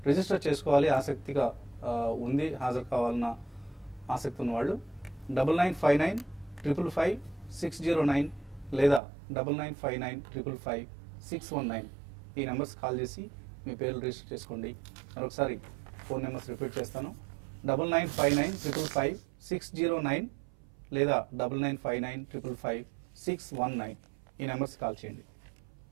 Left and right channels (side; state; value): left; drops out; at 9.0 s